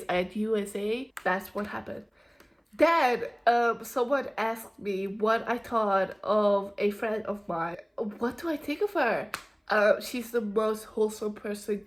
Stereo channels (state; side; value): identical; both; correlation 1.00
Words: I had USA. That's what happened. Then someone asked me what I thought of a friend of mine. What do I think of her? She's the most wholesome person.